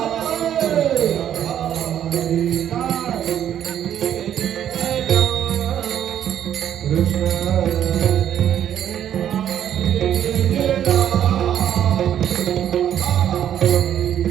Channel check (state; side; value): quieter; left; 10.2 dB